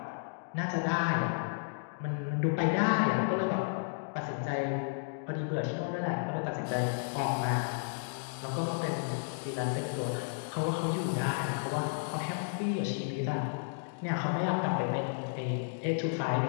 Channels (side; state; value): right; silent; digital silence